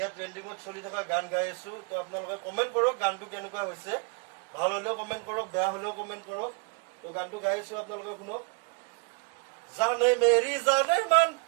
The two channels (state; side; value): quieter; left; 38.4 dB